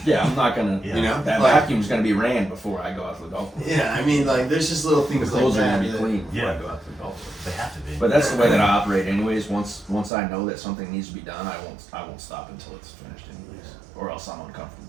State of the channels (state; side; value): drops out; left; at 10.1 s